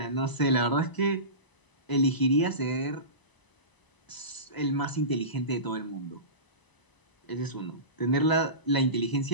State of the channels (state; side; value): late; right; 1.0 ms